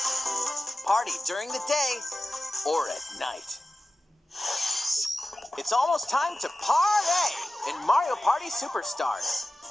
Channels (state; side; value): normal; both; correlation 0.94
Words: Party during the day or at night. It's almost time to party in Mario Party Superstars.